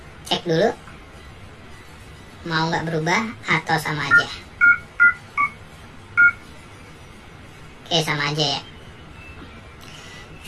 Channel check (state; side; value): identical; both; correlation 1.00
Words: cek dulu. Mau nggak berubah atau sama aja. Oke, sama aja ya.